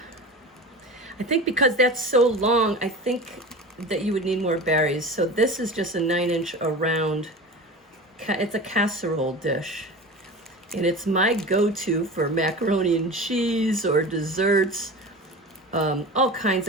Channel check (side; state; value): both; normal; correlation 0.32